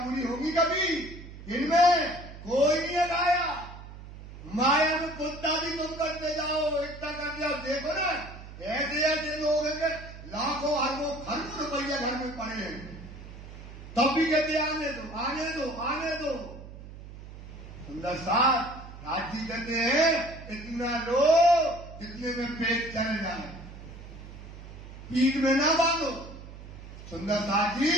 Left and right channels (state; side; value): noise; right; hum, 14 dB below the sound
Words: होगी कभी? इनमें कोई नहीं अगाया। माया में कुत्ता भी तुम करते जाओ, इतना कर दिया। देखो ना, ऐसे ऐसे लोग हैं कि लाखों अरबों खरबों रुपया घर में पड़े हैं, तब भी कहते आने दो, आने दो, आने दो। सुंदर साथ राजी कहते हैं, इतना लो जितने में पेट चल जाए, पीठ में ना बांधो। सुंदर साथ जी,